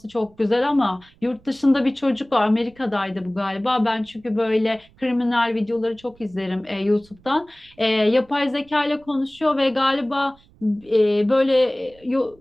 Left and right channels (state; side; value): noise; right; rumble, 29 dB below the sound